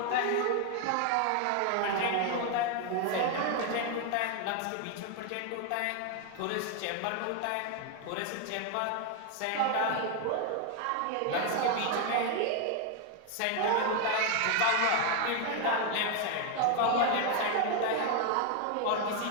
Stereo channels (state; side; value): different; both; correlation 0.01